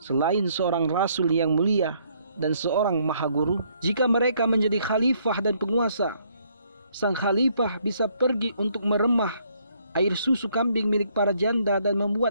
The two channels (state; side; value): inverted; both; correlation -0.68